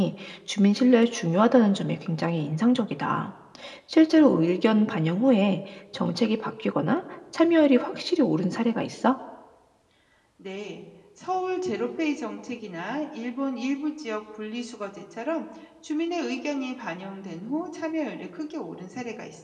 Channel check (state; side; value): identical; both; correlation 1.00